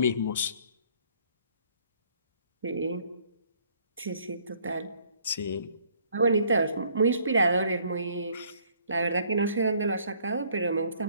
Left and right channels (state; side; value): inverted; both; correlation -0.62